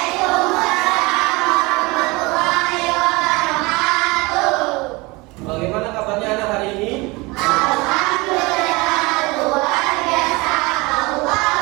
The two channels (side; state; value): left; quieter; 24.2 dB